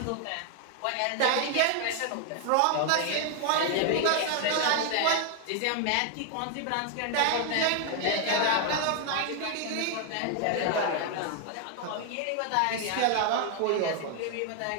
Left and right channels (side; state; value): both; different; correlation 0.00